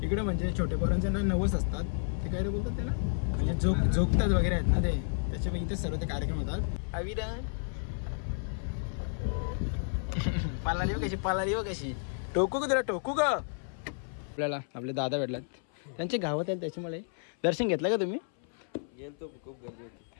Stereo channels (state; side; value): silent; right; 57 dB below the other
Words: इकडे म्हणजे छोटे पोरांचे ना नवस असतात, ते काय बोलतात त्याला, म्हणजे झोपतात वगैरे आहेत ना ते, त्याच्यामुळे इथे सर्व ते कार्यक्रम होतात. अविरा पालाली हो कशी टोकू का तुला, टोकू का. आपल्याला आपले दादा भेटलात, त्यांचे गावात आहेत, त्याच्यामुळे दर्शन घेतलं का तुम्ही. गेलतो, खूप गर्दी